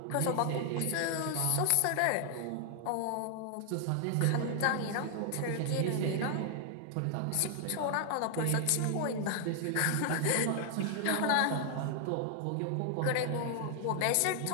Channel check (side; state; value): both; different; correlation 0.00